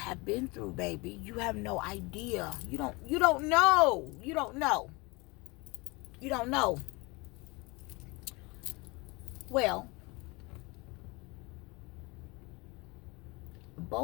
been through, baby. You have no idea. You don't know. You don't know. You don't know. Well,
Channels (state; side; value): quieter; right; 25.8 dB